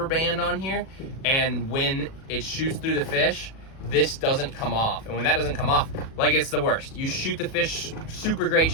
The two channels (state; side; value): late; right; 37 ms